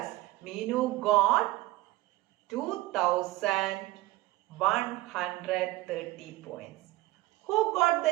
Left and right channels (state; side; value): quieter; left; 17.8 dB